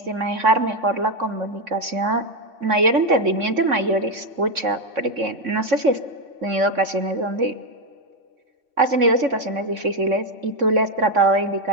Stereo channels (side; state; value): left; late; 3.6 ms